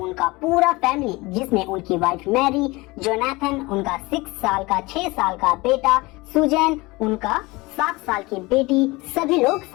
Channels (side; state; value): right; quieter; 22.9 dB